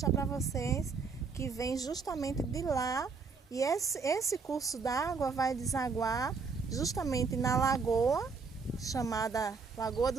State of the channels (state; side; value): quieter; left; 4.9 dB